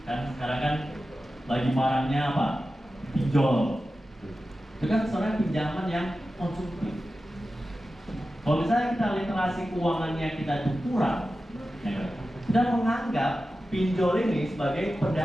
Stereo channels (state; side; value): normal; both; correlation 0.93